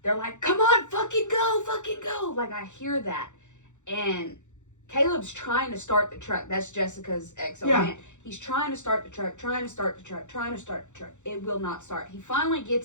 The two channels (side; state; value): right; late; 0.85 ms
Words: they're like, come on, fucking go. Like, I hear that. And Caleb's trying to start the truck. That's Jessica's ex-man. He's trying to start the truck. It will not start. He finally